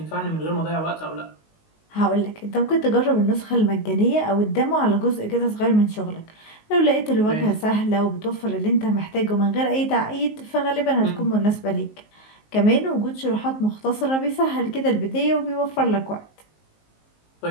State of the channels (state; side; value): late; right; 19 ms